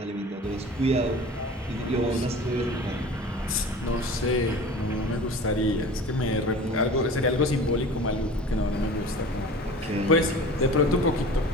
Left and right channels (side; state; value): both; normal; correlation 0.40